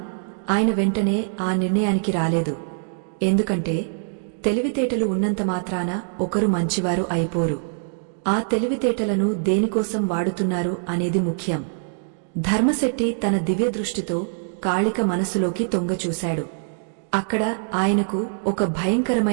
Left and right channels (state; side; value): silent; left; digital silence